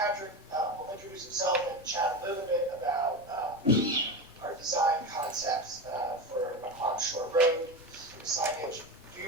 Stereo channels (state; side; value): normal; both; correlation 0.22